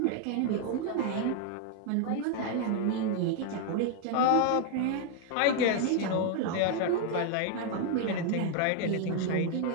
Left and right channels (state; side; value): different; both; correlation 0.00